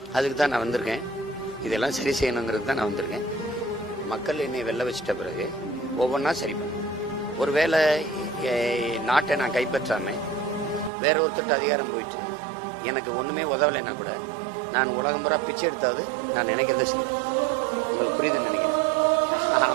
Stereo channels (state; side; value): drops out; left; at 10.9 s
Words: அதுக்கு தான் நான் வந்திருக்கேன். இதெல்லாம் சரி செய்யணுங்கிறது தான் நான் வந்திருக்கேன். மக்கள் என்னை வெல்ல வச்சிட்ட பிறகு ஒவ்வொன்றா சரி பண்ணேன். ஒருவேளை நாட்டை நான் கைப்பற்றாமல் வேற ஒருத்தருக்கு அதிகாரம் போயிட்டு எனக்கு ஒன்றுமே உதவலைன்னா கூட நான் உலகம் பூரா பிச்சை எடுத்தாவது நான் நினைக்கிறத செய்வேன். உங்களுக்கு புரியுதுன்னு நினைக்கிறேன்.